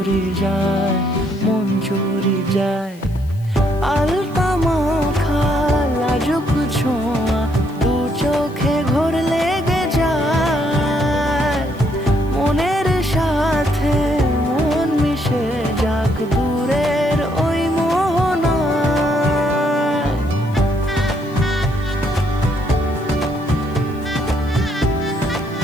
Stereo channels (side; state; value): left; noise; hiss, 27 dB below the sound